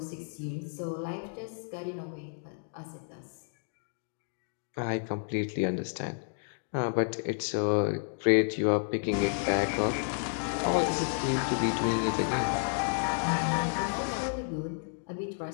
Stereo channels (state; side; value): silent; right; digital silence